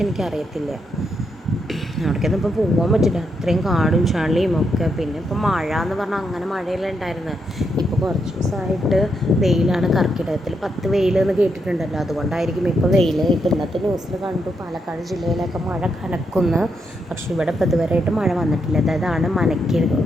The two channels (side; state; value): both; normal; correlation 0.80